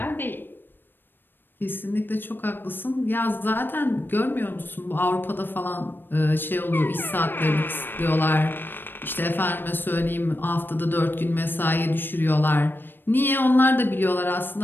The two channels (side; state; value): right; late; 0.096 ms